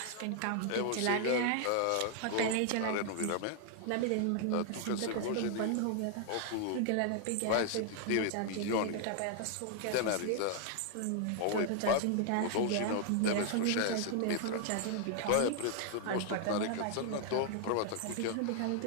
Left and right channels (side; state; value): both; different; correlation 0.00